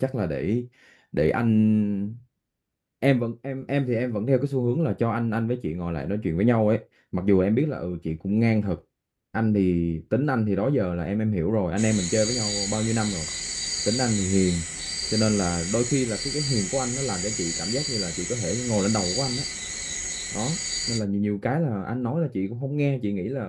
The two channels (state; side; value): identical; both; correlation 1.00